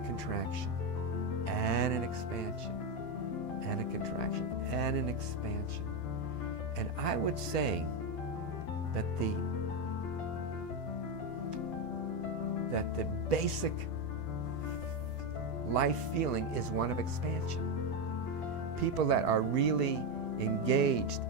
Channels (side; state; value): right; late; 12 ms